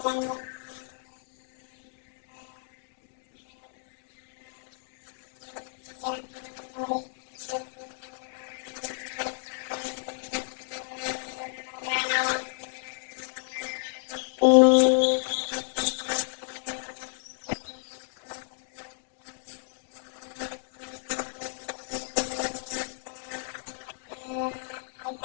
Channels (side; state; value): right; silent; digital silence